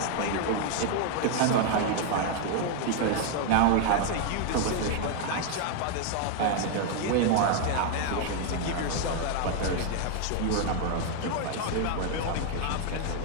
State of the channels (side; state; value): both; different; correlation 0.00